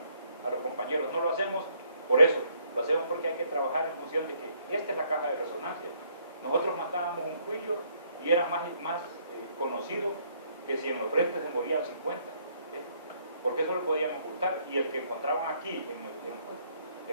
a los compañeros. No lo hacemos por eso, lo hacemos porque hay que trabajar en función de que esta es la caja de resonancia. Nosotros matábamos un cuillo y era más conocido que si en los frentes se morían 50, ¿sí? Porque eso lo podían ocultar, y el que encontraban aquí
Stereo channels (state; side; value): inverted; both; correlation -0.67